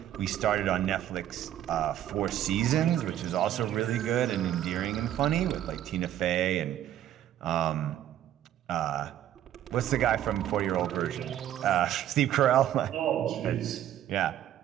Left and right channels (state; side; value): quieter; left; 11.6 dB